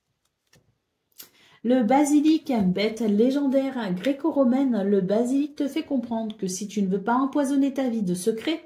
Le basilic, bête légendaire gréco-romaine, le basilic te fait comprendre que si tu ne veux pas empoisonner ta vie de secrets,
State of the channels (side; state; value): both; identical; correlation 1.00